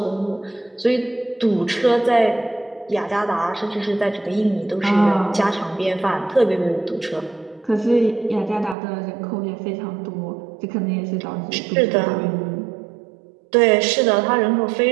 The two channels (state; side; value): drops out; left; at 8.8 s